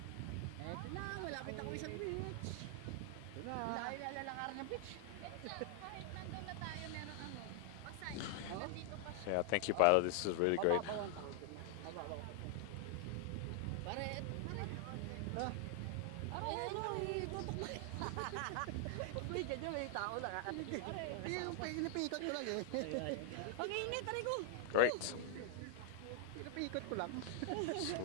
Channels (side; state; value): both; different; correlation 0.00